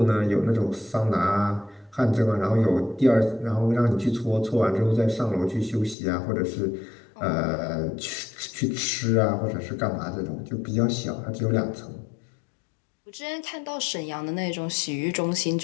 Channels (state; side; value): drops out; right; at 6.0 s